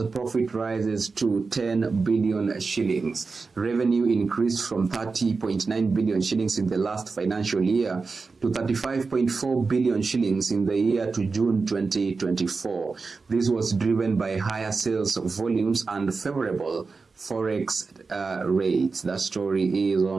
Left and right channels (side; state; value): left; quieter; 4.4 dB